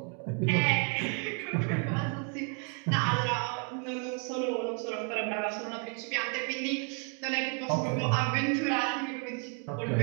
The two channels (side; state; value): left; quieter; 39.8 dB